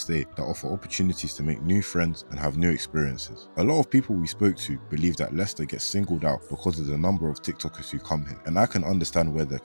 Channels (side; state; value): both; inverted; correlation -1.00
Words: that offer opportunities to make new friends and have new experiences. A lot of people we spoke to believe that Leicester gets singled out because of the number of TikTokers who come here, and I can understand where they're